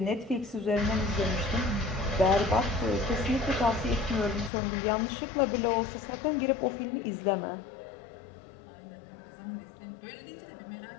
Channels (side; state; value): right; drops out; at 4.5 s